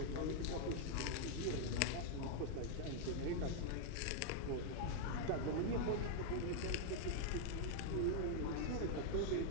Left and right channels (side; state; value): both; different; correlation 0.00